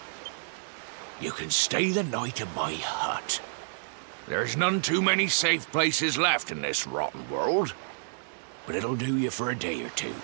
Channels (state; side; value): silent; left; digital silence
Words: You can stay the night in my hut. There's none too many safe places left in this rotten world, but it'll do you for a day or two.